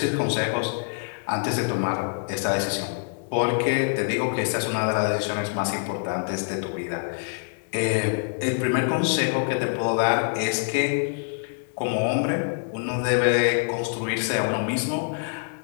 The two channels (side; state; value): right; silent; digital silence